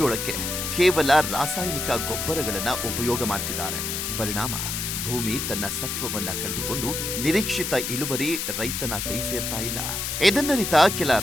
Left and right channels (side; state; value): left; noise; hiss, 3 dB below the sound